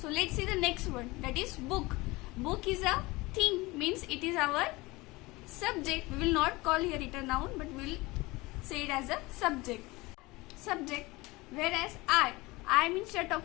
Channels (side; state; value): right; quieter; 22.3 dB